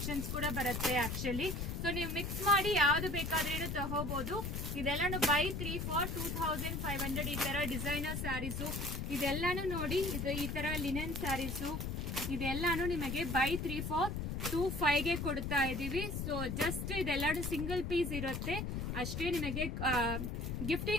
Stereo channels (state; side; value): noise; left; rumble, 3 dB below the sound